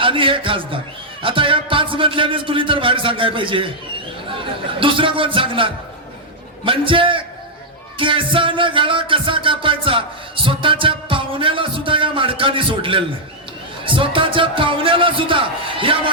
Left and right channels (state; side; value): normal; both; correlation -0.05